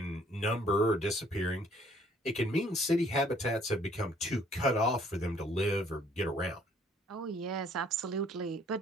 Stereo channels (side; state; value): both; normal; correlation 0.61